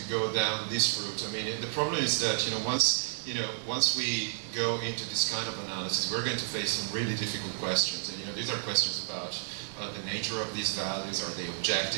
go down this route? I mean, the problem is that once we go into this kind of analysis, we're going to face some really difficult questions. And these are questions about the nature of these values. Are they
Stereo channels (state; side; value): silent; left; digital silence